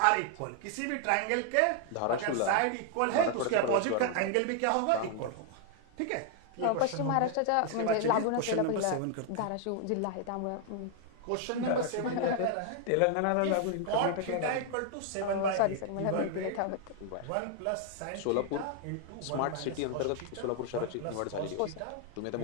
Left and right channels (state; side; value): different; both; correlation 0.00